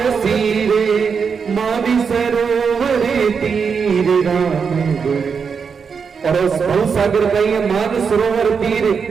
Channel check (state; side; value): quieter; left; 6.0 dB